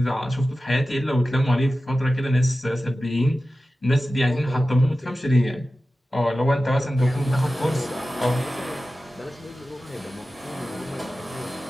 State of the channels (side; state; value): both; normal; correlation 0.94